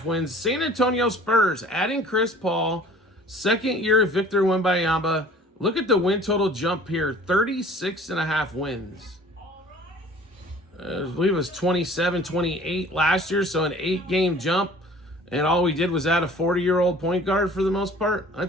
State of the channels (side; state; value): both; normal; correlation 0.49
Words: wins. San Antonio Spurs, adding Chris Paul. Second year of Victor Wembanyama. Look at the win total jump here. 36.5 wins. I believe it was 27, 28 last year, so an 8-game jump. And all we did was add a 40-year-old point guard for the most part.